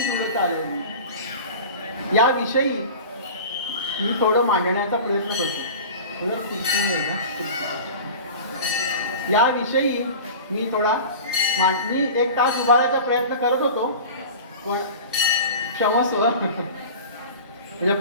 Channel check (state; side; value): inverted; both; correlation -0.36